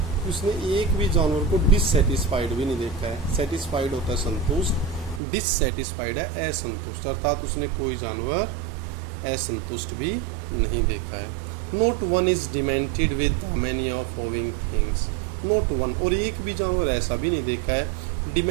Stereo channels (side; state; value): left; drops out; at 5.2 s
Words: उसने एक भी जानवर को डिससेटिस्फाइड भी नहीं देखा है। सेटिस्फाइड होता है संतुष्ट, डिससेटिस्फाइड है असंतुष्ट, अर्थात उसने कोई जानवर असंतुष्ट भी नहीं देखा है। Note one is demented with many of owing things, note one, और एक भी जानवर ऐसा भी नहीं देखा है